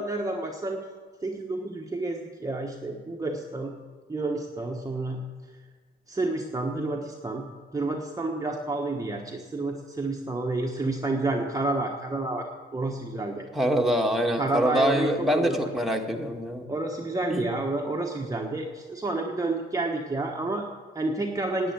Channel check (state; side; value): normal; both; correlation 0.68